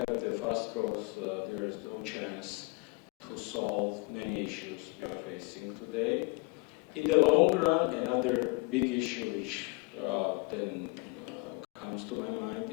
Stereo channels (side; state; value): right; quieter; 28.2 dB